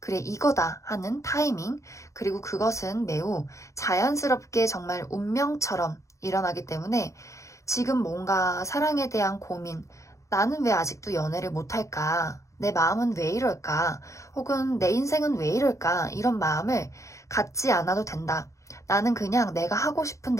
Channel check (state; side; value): late; right; 0.15 ms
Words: 이거다 하는 타이밍. 그리고 그것은 매우 자연스럽게 정말 운명처럼 일어나기 때문에 지금 뭔가 사랑에 대한 고민, 나는 왜 아직도 연애를 못할까? 내 마음은 왜 이럴까? 혹은 내 인생은 왜 이럴까? 이런 마음을 갖지 않아도 된다. 나는 그냥 내가 하고 싶은